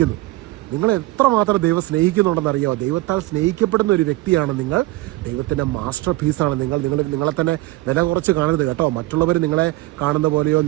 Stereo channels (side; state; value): left; quieter; 19.3 dB